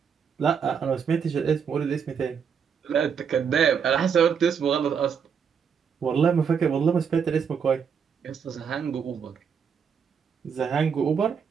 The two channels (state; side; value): quieter; left; 6.8 dB